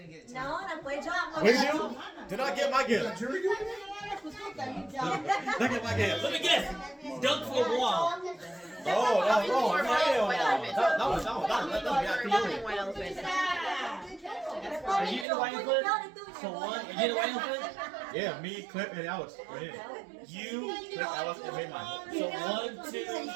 get it. No, 那不会这样。 What do you do? Did I get my gift? Did I get my gift? Let me guess. Dunk for a wall. Oh, no, that was White elephant. Are you in the white elephant? So one. You get a white elephant? Yeah, me, Clip, and Alex. Right here. You. Clip, Alex, and me, mine. So 1, 2, 3,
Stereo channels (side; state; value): left; drops out; at 15.2 s